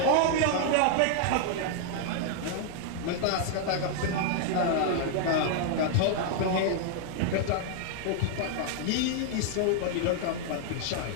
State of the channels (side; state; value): both; different; correlation 0.00